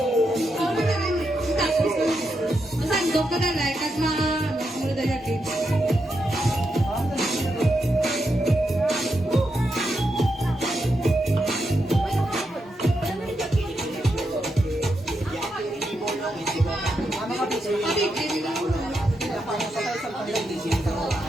padalay, kag sunod na yakin.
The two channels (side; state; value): both; normal; correlation 0.84